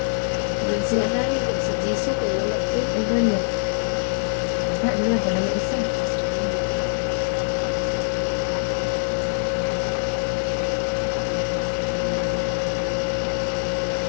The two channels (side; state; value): right; silent; digital silence